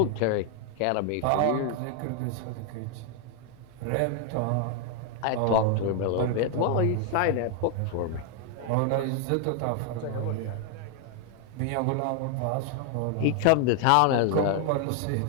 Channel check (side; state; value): both; different; correlation 0.00